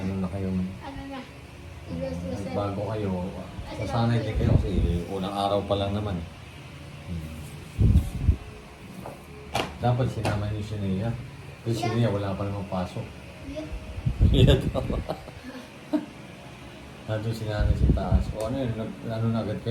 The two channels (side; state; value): both; identical; correlation 1.00